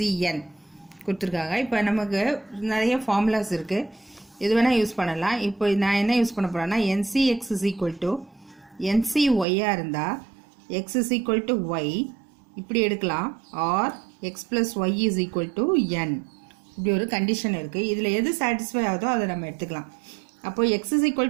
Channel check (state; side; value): drops out; left; at 9.5 s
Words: கொடுத்துருக்காங்க. இப்போ நமக்கு நிறைய ஃபார்முலாஸ் இருக்குது, இது வேணால் யூஸ் பண்ணலாம். இப்போ நான் என்ன யூஸ் பண்ண போகிறேன்னா NCX is equal to NCYயாக இருந்தால் X is equal to Y இப்படி எடுக்கலாம், R X plus Y is equal to N இப்படி ஒரு கண்டிஷன் இருக்குது. இதில் எது சாட்டிஸ்ஃபை ஆகுதோ அதை நம்ம எடுத்துக்கலாம். அப்போ x is equal